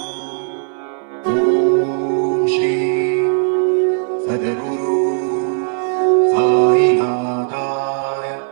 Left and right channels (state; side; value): silent; left; 60 dB below the other